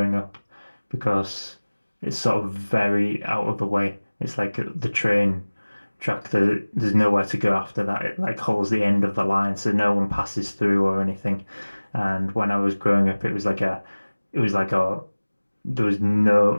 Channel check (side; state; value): both; inverted; correlation -1.00